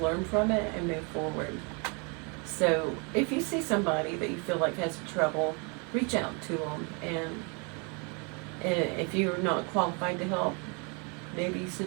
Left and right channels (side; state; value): left; quieter; 33.6 dB